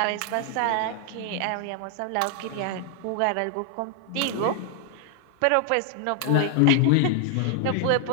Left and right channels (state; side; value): different; both; correlation 0.00